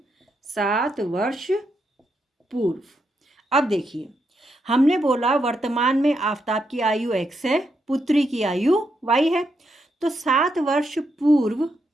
7 वर्ष पूर्व। अब देखिए, हमने बोला वर्तमान में आफताब की आयु x है, पुत्री की आयु y है। तो 7 वर्ष पूर्व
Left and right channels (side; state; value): both; normal; correlation 0.81